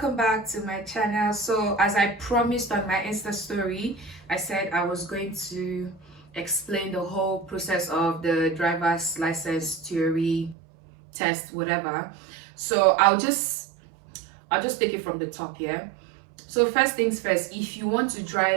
back to my channel. So as I promised on my Insta story, I said I was going to explain the whole process of the driver's license theory test, whatever. So I'll just take it from the top here. So first things first, if you want to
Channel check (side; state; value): left; drops out; at 10.6 s